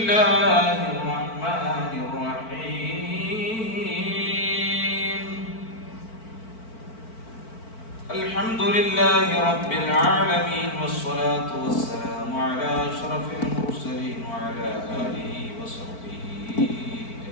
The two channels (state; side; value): late; right; 4.5 ms